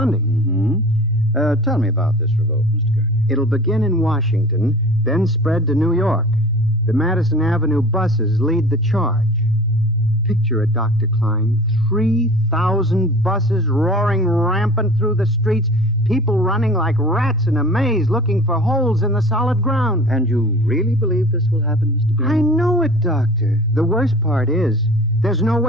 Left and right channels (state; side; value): normal; both; correlation 0.41